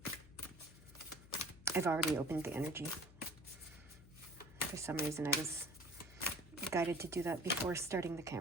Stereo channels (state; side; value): noise; left; hum, 20 dB below the sound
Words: I've already opened the energy. For some reason, I was guided to do that before starting the